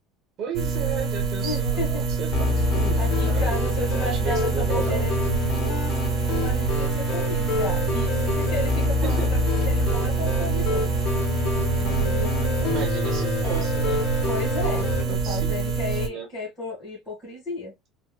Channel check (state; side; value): normal; both; correlation 0.35